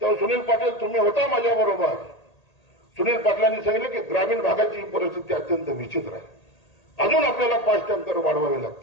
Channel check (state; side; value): late; right; 1.8 ms